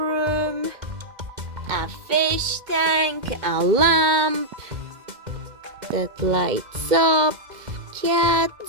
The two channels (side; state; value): left; late; 2.0 ms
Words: a fish tank, a lamp that lights up,